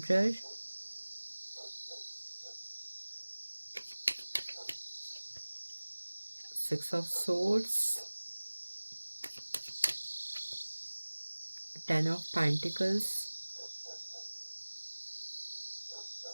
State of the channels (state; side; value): inverted; both; correlation -1.00